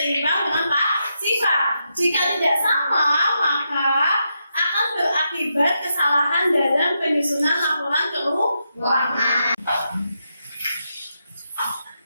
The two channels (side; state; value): both; inverted; correlation -0.84